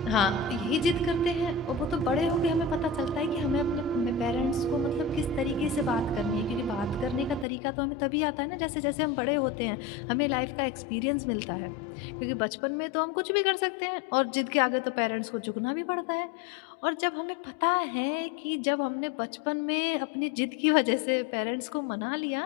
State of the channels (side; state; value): right; drops out; at 7.5 s